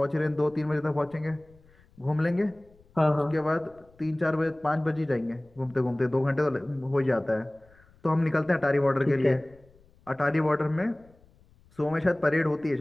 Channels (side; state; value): left; noise; rumble, 29 dB below the sound